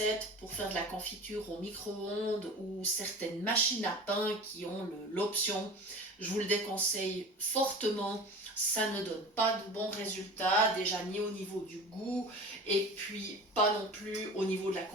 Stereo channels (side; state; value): both; normal; correlation 0.37